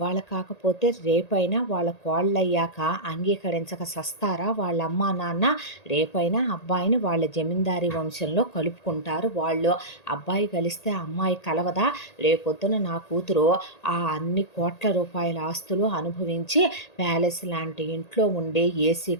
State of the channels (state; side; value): late; right; 1.8 ms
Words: కాకపోతే రేపైనా వాళ్ళ కోళ్ళయ్యాక అంగీకరించక సస్తారా వాళ్ళ అమ్మా నాన్న? రేపైనా అబ్బాయిని వాళ్ళ జమీందారీ వంశంలో కలుపుకుంటారు వాళ్ళు. అబ్బాయి కలిస్తే అమ్మాయి కలవదా? రేపొద్దున నా కూతురు ఆ అన్ని కోట్ల రూపాయల ఆస్తులు అనుభవించి ప్యాలెస్ లాంటి ఇంట్లో ఉండే ఏసీ